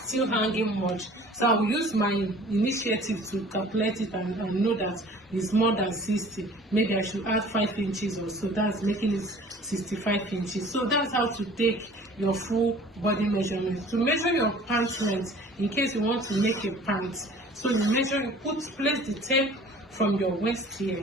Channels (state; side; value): normal; both; correlation 0.48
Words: still hanging much. So I'll use my initiative to calculate it and know that it's more than 60. Maybe I should add 5 inches or so. That's making it 65 inches. So that's how to take your full body measurement. To measure your pant length, in case you want to make a pant, so you place the tape from your waist here.